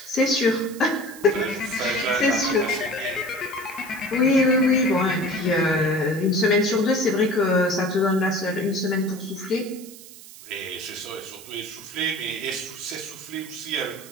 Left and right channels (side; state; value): right; noise; hiss, 17 dB below the sound